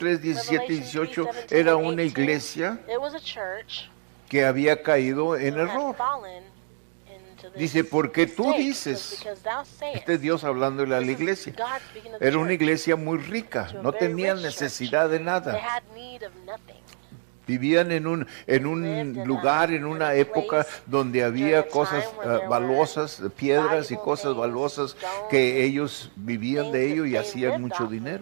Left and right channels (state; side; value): silent; left; digital silence